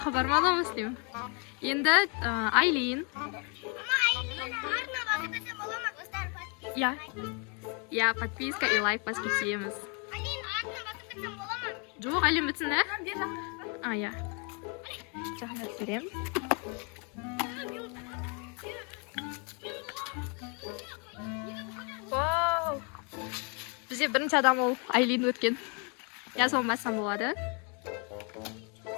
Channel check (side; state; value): right; quieter; 35.2 dB